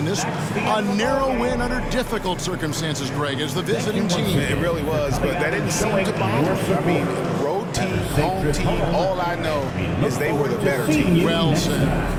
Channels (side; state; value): both; identical; correlation 1.00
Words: this one. A narrow win under difficult circumstances, Greg, as the visiting team. It really was, but that didn't seem to bother me. I mean, road team, home team, all I know is they were the better team. Well said.